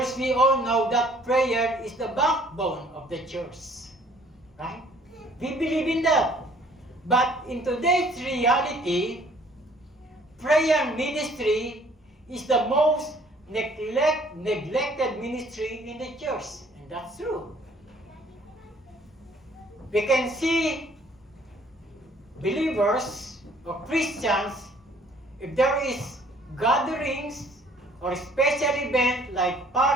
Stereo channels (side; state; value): both; normal; correlation 0.58